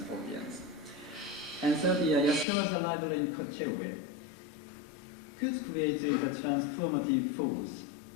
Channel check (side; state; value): right; drops out; at 2.5 s